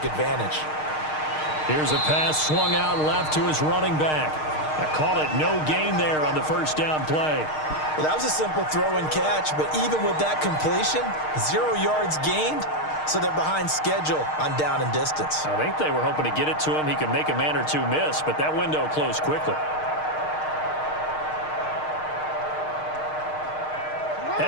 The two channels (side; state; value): right; late; 6.5 ms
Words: advantage. Here's a pass swung out left to his running back. I call it no gain there on the first down play. Well, that was a simple throw and catch, but even with that completion, 0 yards gained, so they're behind schedule on down and distance. I think they were hoping to get it to him. He could make a man or two miss, but that window closed quickly.